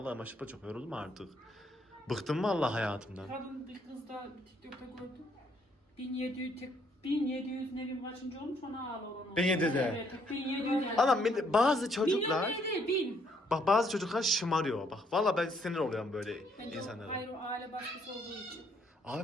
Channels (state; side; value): normal; both; correlation 0.69